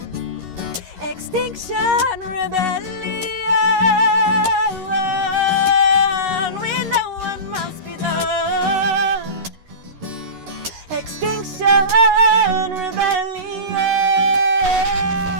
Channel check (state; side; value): late; left; 11 ms